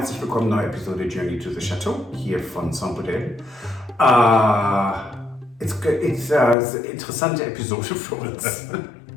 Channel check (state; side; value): drops out; right; at 6.6 s